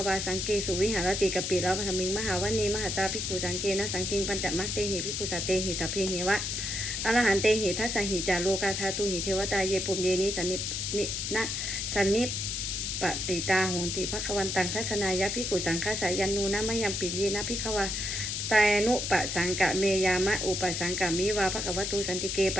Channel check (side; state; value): left; noise; hiss, 2 dB below the sound